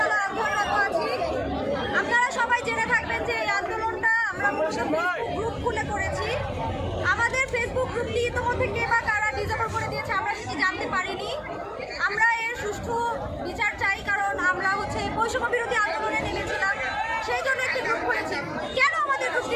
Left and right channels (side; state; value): both; identical; correlation 1.00